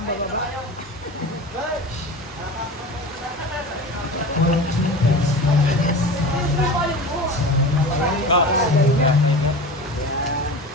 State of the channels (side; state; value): both; normal; correlation 0.32